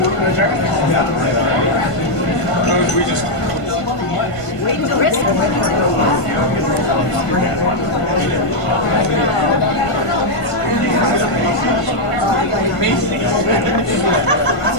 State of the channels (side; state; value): right; late; 1.5 ms